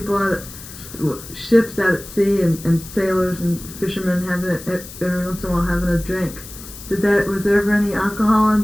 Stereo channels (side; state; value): left; noise; hiss, 15 dB below the sound